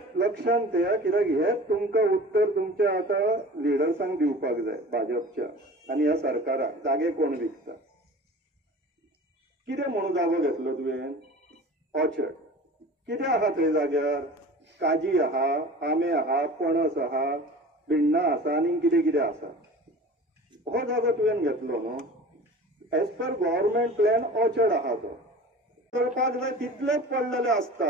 लक्षांत ठेया, कित्याक हेच तुमकां उत्तर तुमच्या आता लिडर्सांक दिवपाक जाय भाजपच्या आनी ह्या सरकाराक. जागे कोण विकता, कितें म्हणून जागो घेतलो तुवें? ऑर्चर्ड. कितें आहा थंय जाग्यार? काजी आहा, आंबे आहा, पणस आहा, भिण्णां आसा आनी कितें कितें आसा. हो जागो तुवें घेतलो न्हू. As per government plan orchard आहा तो करपाक जाय तितलेच पडलेले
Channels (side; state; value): both; normal; correlation 0.39